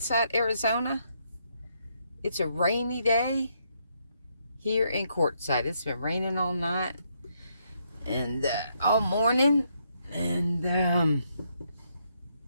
Arizona. It's a rainy day here in Quartzsite. It's been raining all night and all morning, and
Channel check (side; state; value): both; inverted; correlation -0.76